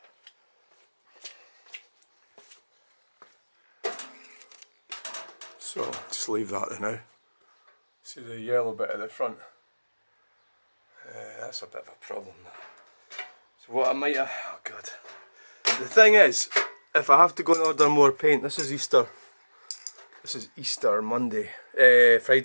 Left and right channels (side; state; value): both; inverted; correlation -1.00